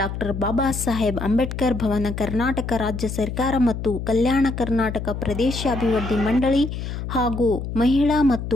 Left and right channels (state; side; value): noise; left; hum, 6 dB below the sound